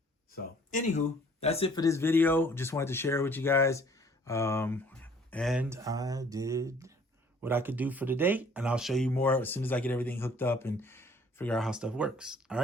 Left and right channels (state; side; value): normal; both; correlation 0.56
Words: So anywho, that's it for this video. Just wanted to share it with you guys. And I did what I could do for today, and I'll show you more as soon as I get everything hooked up and figure out how stuff works. All